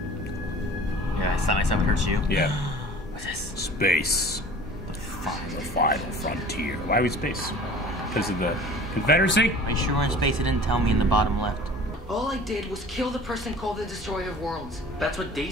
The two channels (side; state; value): both; normal; correlation 0.44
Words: Yeah, it's not nice how it hurts you. Yeah. What's this? Space. The final frontier. Why are we space? Because of the Confederacy? Are you sure we're in space? It didn't tell me in the bottom left. All I did was kill the person called the Destroyer of Worlds. That's what